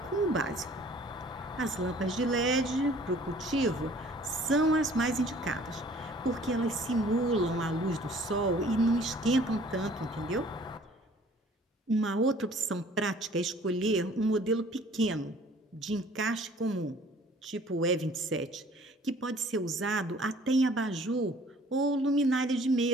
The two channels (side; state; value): both; normal; correlation 0.54